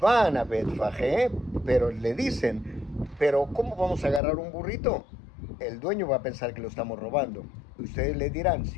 a Betfagé, pero le dicen, pero ¿cómo vamos a agarrar un burrito? el dueño va a pensar que lo estamos robando. Ustedes le dirán,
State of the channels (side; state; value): right; drops out; at 4.2 s